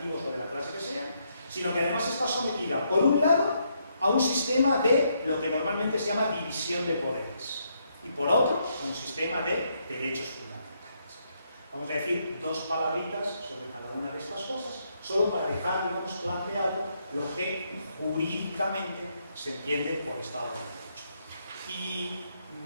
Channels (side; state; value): both; inverted; correlation -0.76